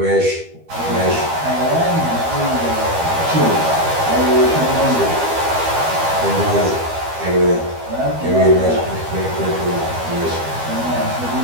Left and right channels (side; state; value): left; late; 12 ms